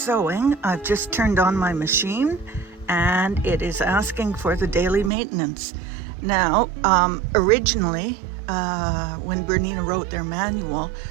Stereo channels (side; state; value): left; drops out; at 5.1 s